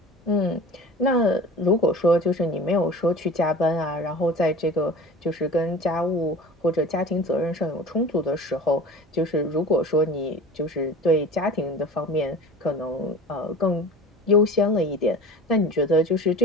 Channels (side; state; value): both; normal; correlation 0.38